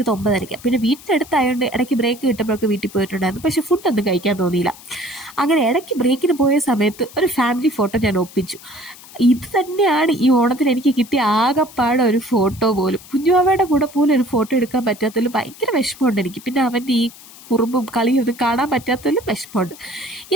9:30. പിന്നെ വീട്ടിനടുത്തായതുകൊണ്ട് ഇടയ്ക്ക് ബ്രേക്ക് കിട്ടുമ്പോഴൊക്കെ വീട്ടിൽ പോയിട്ടുണ്ടായിരുന്നു. പക്ഷെ ഫുഡൊന്നും കഴിക്കാൻ തോന്നിയില്ല. അങ്ങനെ ഇടയ്ക്ക് ബ്രേക്കിന് പോയ സമയത്ത് ഒരു ഫാമിലി ഫോട്ടോ ഞാൻ ഒപ്പിച്ചു. ഇത് തന്നെയാണ് ഈ ഓണത്തിന് എനിക്ക് കിട്ടിയ ആകെപ്പാടെ ഒരു ഫോട്ടോ പോലും. കുഞ്ഞുമാവയുടെ കൂടെ പോലും ഒരു ഫോട്ടോ എടുക്കാൻ പറ്റാത്തതിൽ ഭയങ്കര വിഷമമുണ്ട് എനിക്ക്. പിന്നെ അവൻ്റെ ഈ കുറുമ്പും കളിയും ഒന്നും കാണാൻ പറ്റാത്തതിലും വിഷമമുണ്ട്.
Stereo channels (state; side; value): noise; left; hiss, 20 dB below the sound